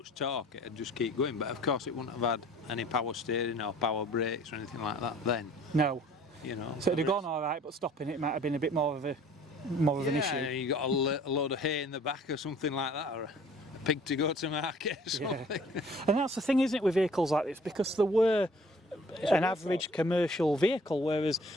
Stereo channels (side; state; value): both; normal; correlation 0.53